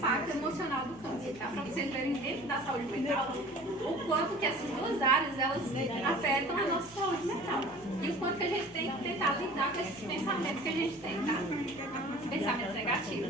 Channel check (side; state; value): both; normal; correlation 0.45